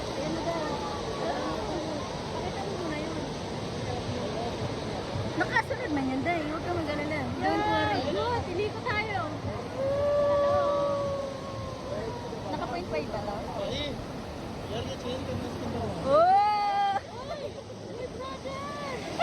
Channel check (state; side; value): identical; both; correlation 1.00